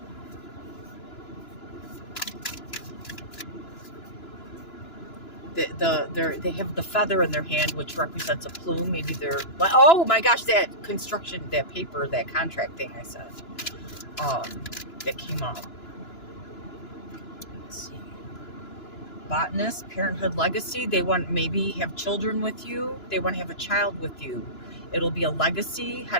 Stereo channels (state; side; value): late; right; 2.9 ms